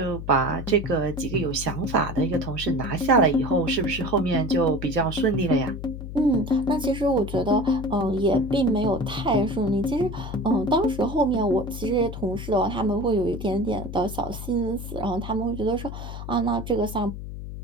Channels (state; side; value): noise; left; hum, 9 dB below the sound